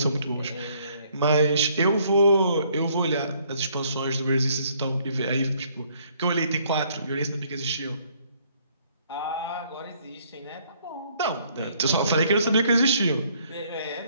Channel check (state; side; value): inverted; both; correlation -0.64